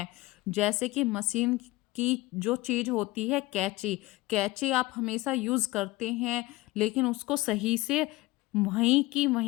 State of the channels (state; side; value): quieter; right; 20.0 dB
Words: जैसे कि मशीन की जो चीज़ होती है कैंची, कैंची आप हमेशा यूज़ करते हैं लेकिन उसको सही से वहीं की